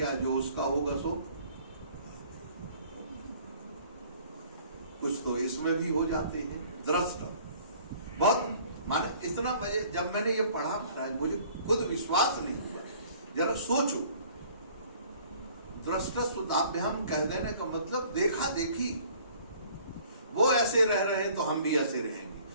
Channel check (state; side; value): inverted; both; correlation -0.54